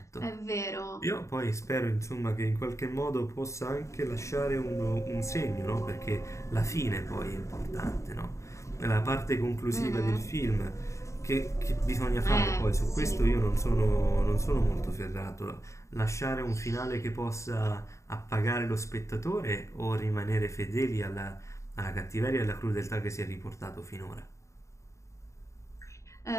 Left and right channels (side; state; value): right; late; 0.14 ms